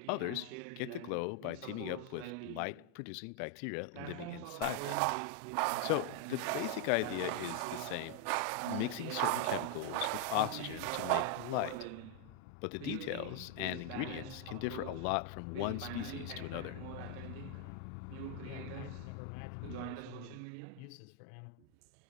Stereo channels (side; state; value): both; different; correlation 0.00